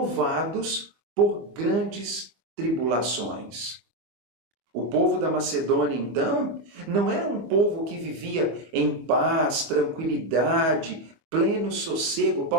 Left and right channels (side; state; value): left; late; 25 ms